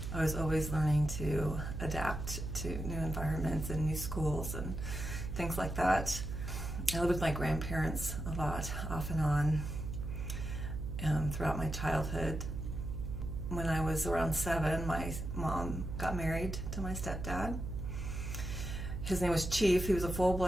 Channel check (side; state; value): right; noise; hum, 5 dB below the sound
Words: was always learning to adapt to new environments and new schools and things like that. I lived with my grandparents a lot, off and on, throughout my childhood. When I was around 7, my mom got married to my stepdad. His name was Chief. He was a